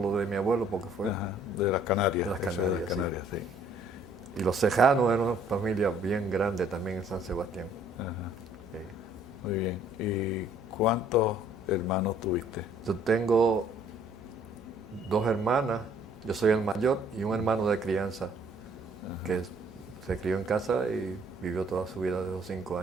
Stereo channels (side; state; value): both; normal; correlation 0.61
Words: de mi abuelo porque fue de las Canarias. De las Canarias, sí. Y los Cejanos eran una familia bien grande también en San Sebastián. Ajá. Sí. Muy bien. ¿Y cuántos hermanos tuviste? Yo tengo 2 hermanas, yo soy el mayor, y un hermano de crianza, que se crió en casa y vivió toda su vida de los 5